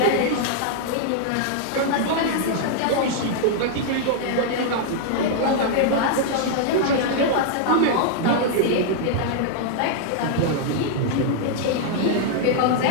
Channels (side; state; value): both; different; correlation -0.01